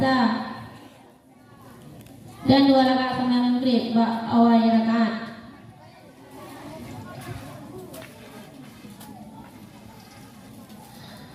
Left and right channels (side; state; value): both; identical; correlation 1.00